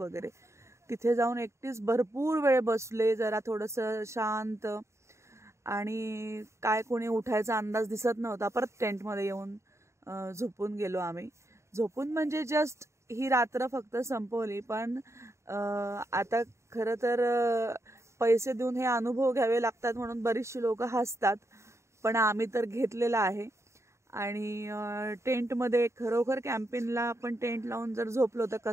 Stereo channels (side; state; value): left; late; 0.14 ms